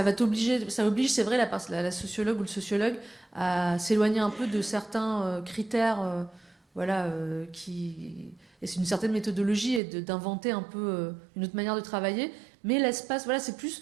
va t'obliger, ça oblige, c'est vrai, la sociologue ou le sociologue à s'éloigner un peu de certains critères, voilà, et c'est une certaine méthodologie et d'inventer un peu une autre manière de travailler. Mais l'espace, voilà, c'est plus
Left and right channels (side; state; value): left; drops out; at 9.8 s